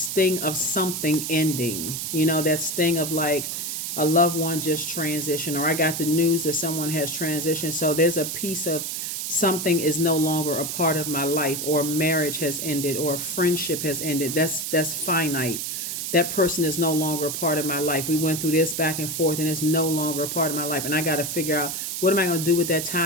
of something ending. You know, that sting of like a loved one just transitioned, or I got the news that someone has transitioned. So there's a piece of something is no longer a part of my life, or marriage has ended, or friendship has ended. That's finite. That person is no longer a part of my life. We went through this back and forth, and it's no longer a part of my life. And I got to figure out, what am I going to do with that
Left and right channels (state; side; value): noise; right; hiss, 4 dB below the sound